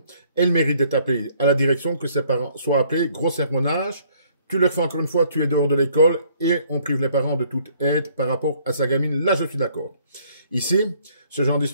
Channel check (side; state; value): both; inverted; correlation -0.63